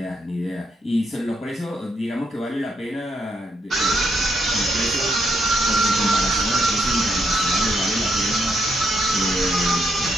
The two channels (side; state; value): both; normal; correlation 0.77